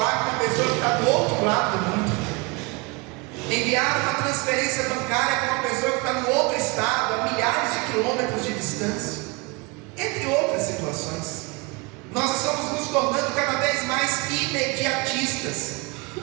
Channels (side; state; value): left; quieter; 27.0 dB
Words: com uma pessoa que está do outro lado do mundo, enviar uma transferência bancária para uma pessoa que está no outro estado, a milhares de quilômetros de distância, entre outras situações. Nós estamos nos tornando cada vez mais imediatistas,